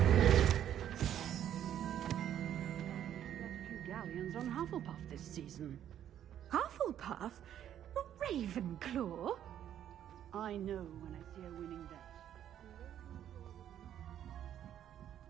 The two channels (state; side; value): quieter; left; 10.5 dB